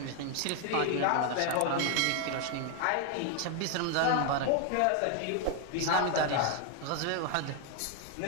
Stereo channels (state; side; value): different; both; correlation 0.01